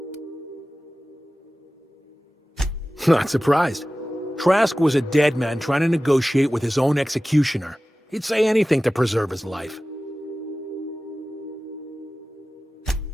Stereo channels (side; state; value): both; normal; correlation 0.96